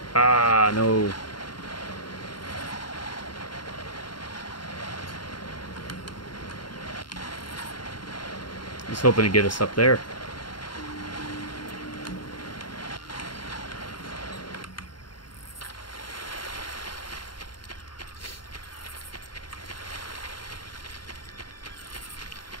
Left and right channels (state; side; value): late; right; 0.72 ms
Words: Ah, no. I was hoping to get us up there.